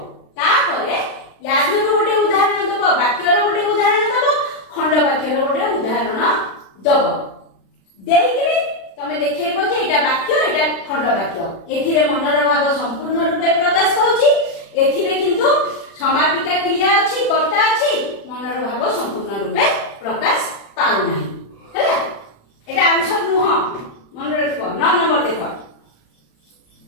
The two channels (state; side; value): late; right; 36 ms